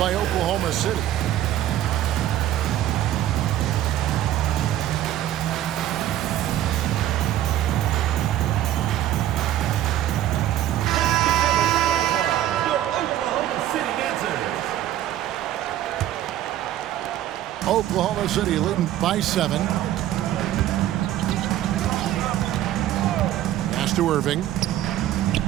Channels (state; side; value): quieter; left; 12.7 dB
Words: Oklahoma City. Oklahoma City leading by 7. Pass to Irving.